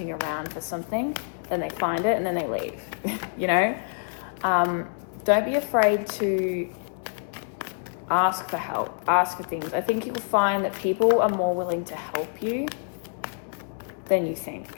around for something, then they find it and then they leave. You know, don't be afraid to ask for help, ask for things. I think you'll find that people are more willing to help you than you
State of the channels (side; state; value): right; silent; 61 dB below the other